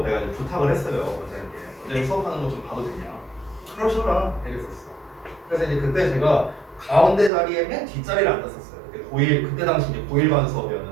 내가 이제 부탁을 했어요. 원장님께 원장님 수업하는 거 좀 봐도 되냐? 그러셔라 이랬었어. 그래서 이제 그때 제가 가운데 자리에 맨 뒷자리를 앉았었어요. 그때 고1 그때 당시 이제 고1반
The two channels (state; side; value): drops out; left; at 7.3 s